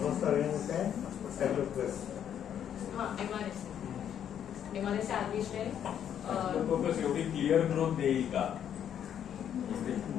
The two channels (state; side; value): quieter; right; 9.4 dB